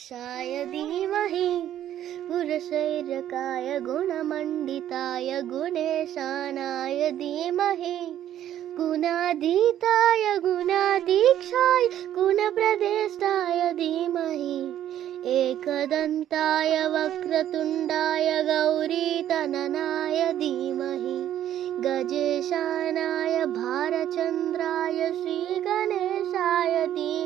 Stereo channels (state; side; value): quieter; left; 11.4 dB